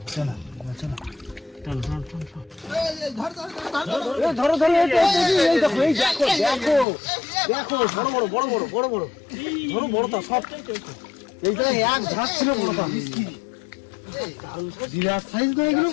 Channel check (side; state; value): right; drops out; at 6.9 s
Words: চলো চলো। টান টান টান টান। এই ধর ধর ধর ধর। এ ধরো ধরো, এই দেখো এই দেখো দেখো দেখো, বড় বড় বড় বড় বড় বড় ধরো, বড় তো সব। এই জায়গায় এক ঝাঁক ছিল বড়টা, বিরাট সাইজ না এগুলো।